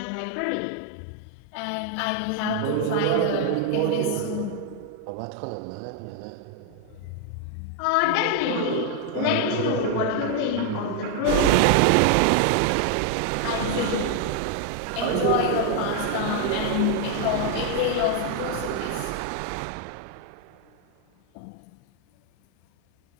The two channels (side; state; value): both; different; correlation 0.00